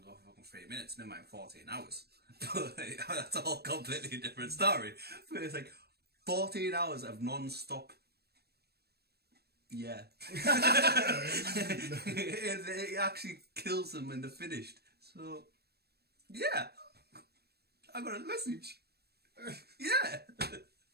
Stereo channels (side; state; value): left; late; 0.47 ms